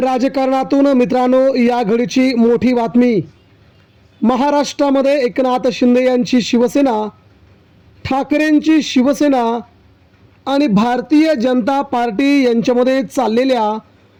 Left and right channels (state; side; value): identical; both; correlation 1.00